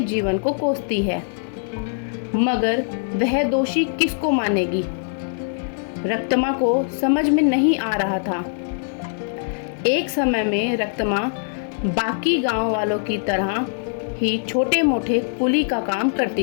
जीवन को कोसती है। मगर वह दोषी किसको मानेगी? रक्तमा को समझ में नहीं आ रहा था। एक समय में रक्तमा बाकी गांव वालों की तरह ही छोटे मोटे कुली का काम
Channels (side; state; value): right; silent; 62 dB below the other